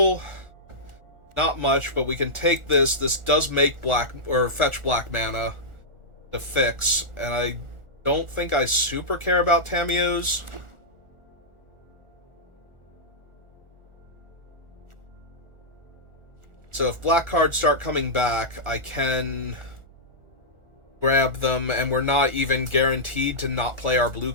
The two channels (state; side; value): late; left; 1.4 ms